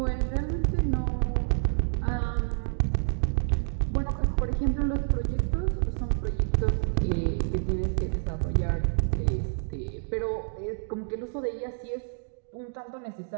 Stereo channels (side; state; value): left; silent; digital silence